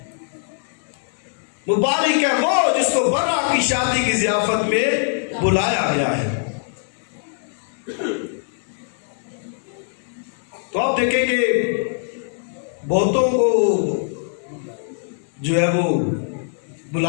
مبارک ہے وہ جس کو برا کی شادی کی ضیافت میں بلایا گیا ہے. تو آپ دیکھیں کہ بہتوں کو جو ہے وہ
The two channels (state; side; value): silent; right; 58 dB below the other